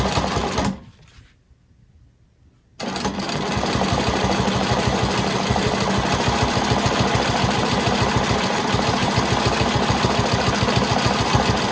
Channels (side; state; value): both; identical; correlation 1.00